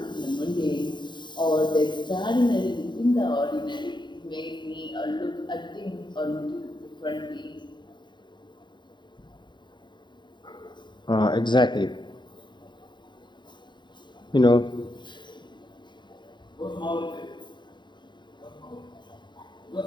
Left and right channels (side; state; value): right; late; 0.22 ms